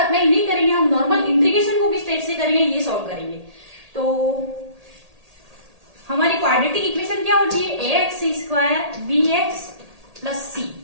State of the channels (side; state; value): left; late; 1.8 ms